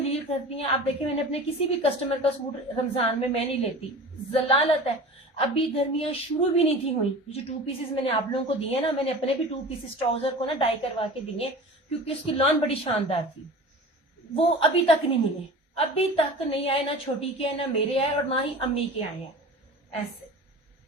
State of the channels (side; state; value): both; normal; correlation 0.37